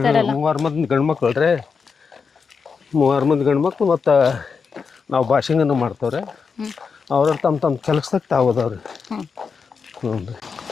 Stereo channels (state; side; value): quieter; right; 5.5 dB